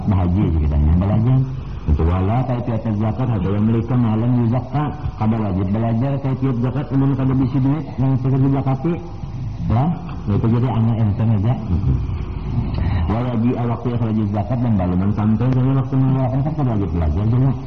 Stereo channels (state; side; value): identical; both; correlation 1.00